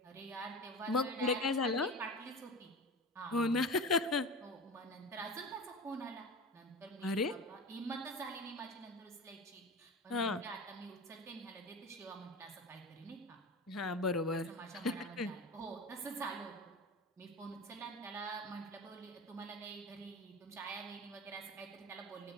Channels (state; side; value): normal; both; correlation 0.30